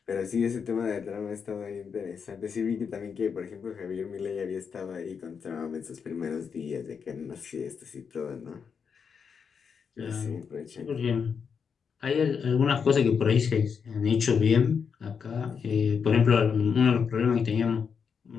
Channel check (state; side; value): quieter; right; 6.4 dB